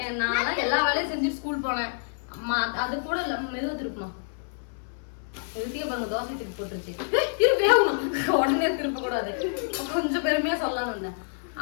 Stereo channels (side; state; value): right; silent; 60 dB below the other